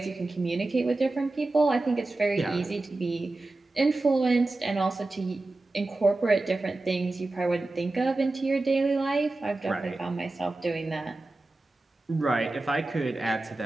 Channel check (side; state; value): left; quieter; 3.0 dB